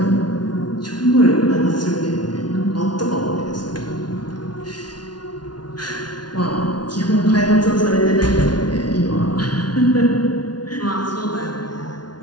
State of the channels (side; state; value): right; late; 0.70 ms